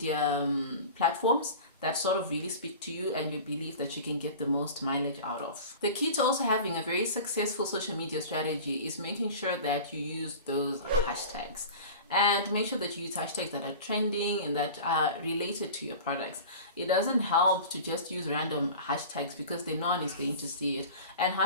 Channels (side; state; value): both; inverted; correlation -0.36